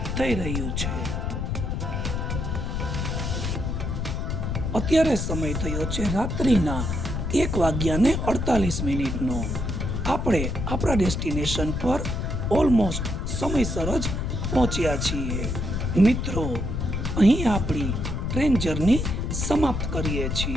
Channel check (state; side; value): noise; left; rumble, 2 dB below the sound